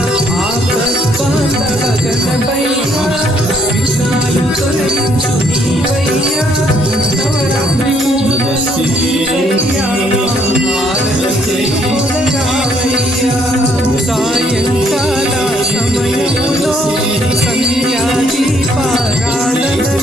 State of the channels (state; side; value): normal; both; correlation 0.68